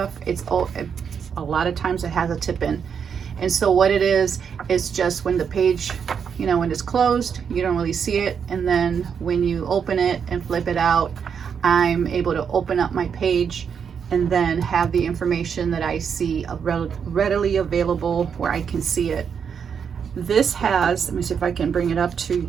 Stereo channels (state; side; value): quieter; left; 7.0 dB